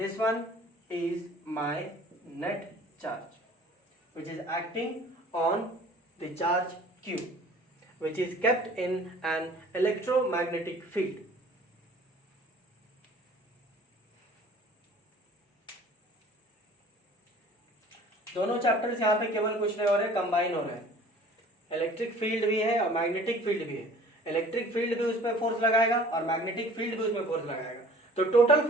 one is my net charge which is acting on the charge q, which is kept in an electromagnetic field. दोनों chapters यहाँ पे केवल कुछ नहीं हो रहे, combine हो रहे हैं. इलेक्ट्रिक फील्ड भी है और मैग्नेटिक फील्ड भी है. इलेक्ट्रिक फील्ड भी उस पर फोर्स लगाएगा और मैग्नेटिक फील्ड भी उसमें फोर्स लगाएगा. तो टोटल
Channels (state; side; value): normal; both; correlation 0.49